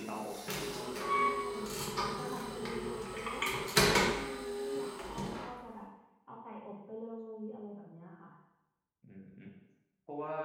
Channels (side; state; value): both; identical; correlation 1.00